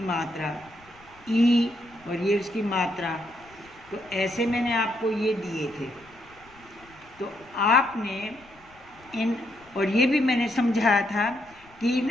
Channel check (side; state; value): left; noise; rumble, 26 dB below the sound